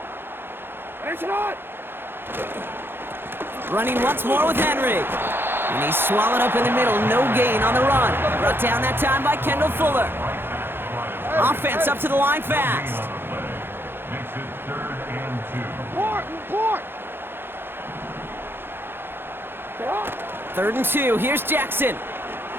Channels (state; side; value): late; left; 0.10 ms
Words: Running once more with Henry. And he's swallowed up in the middle. No gain on the run. Brought down that time by Kendall Fuller. Offense up to the line fast. Makes it 3rd and 2. 3rd and 2. Here's Jackson.